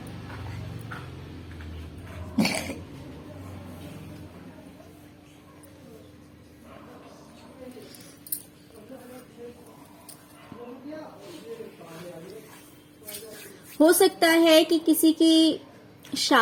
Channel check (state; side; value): identical; both; correlation 1.00